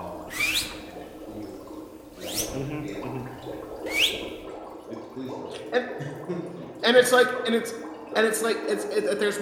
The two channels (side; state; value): both; identical; correlation 1.00